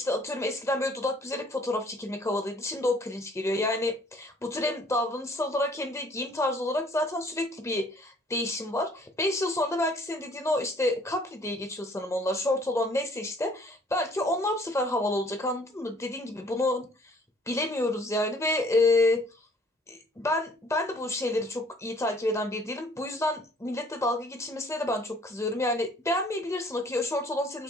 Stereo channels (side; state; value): both; normal; correlation 0.58